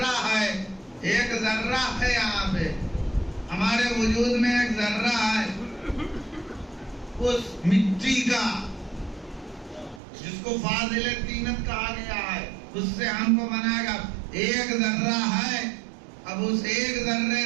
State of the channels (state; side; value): drops out; left; at 10.0 s